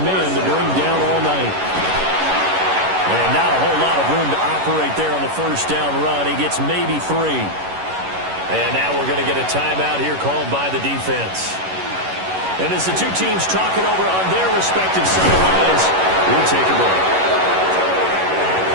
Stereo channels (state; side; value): late; left; 11 ms